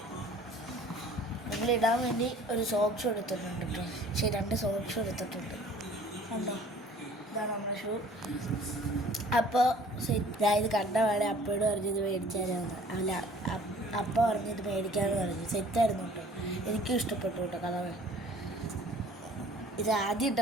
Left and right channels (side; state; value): both; normal; correlation 0.51